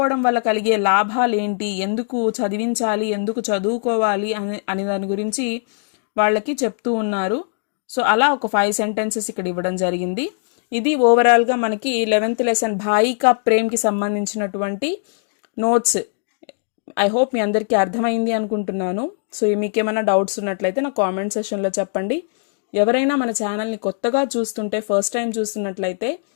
వల్ల కలిగే లాభాలు ఏంటి, ఎందుకు చదివించాలి, ఎందుకు చదువుకోవాలి అని దాని గురించి వాళ్ళకి చెప్తూ ఉన్నారు. సో అలా ఒక 5 సెంటెన్సెస్ ఇక్కడ ఇవ్వడం జరిగింది. ఇది ఓవరాల్గా మనకి 11th లెసన్ భాయి కా ప్రేమ్కి సంబంధించినటువంటి నోట్స్. ఐ హోప్ మీ అందరికీ అర్థమైంది అనుకుంటున్నాను. సో మీకేమైనా డౌట్స్ ఉన్నట్లయితే నా కామెంట్ సెషన్లో చెప్పండి. ఎవరైనా మన ఛానల్ని కొత్తగా చూస్తుంటే, ఫస్ట్ టైం చూస్తున్నట్లయితే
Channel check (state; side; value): silent; right; digital silence